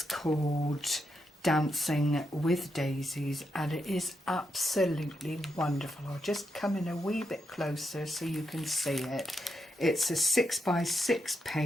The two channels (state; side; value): normal; both; correlation 0.83